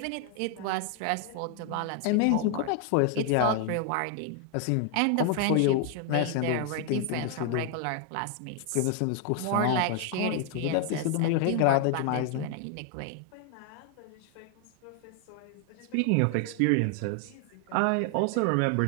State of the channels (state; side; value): different; both; correlation 0.00